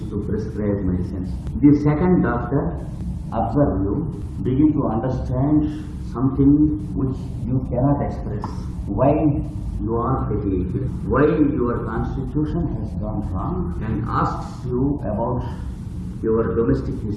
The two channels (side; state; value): both; identical; correlation 1.00